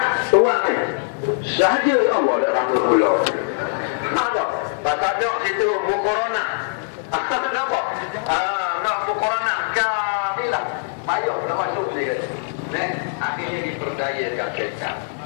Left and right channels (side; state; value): right; silent; digital silence